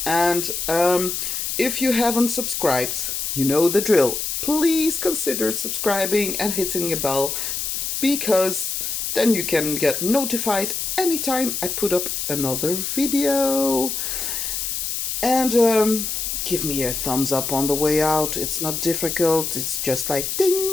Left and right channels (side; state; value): left; noise; hiss, 2 dB below the sound